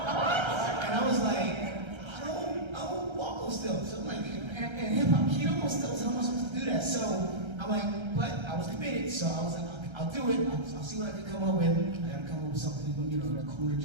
was like, I don't walk on stilts. So I'm like, and hip hop keto on stilts, how am I supposed to do that? So I'm like, but I was committed, so I was like, I'll do it. I'll see what I can come up with. I gotta come up with something, you know, cool to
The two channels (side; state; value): left; late; 1.3 ms